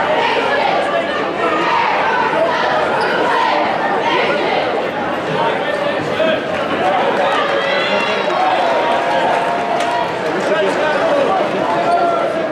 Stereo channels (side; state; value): both; identical; correlation 1.00